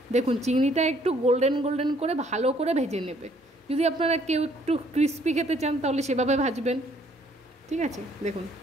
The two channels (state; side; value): normal; both; correlation 0.63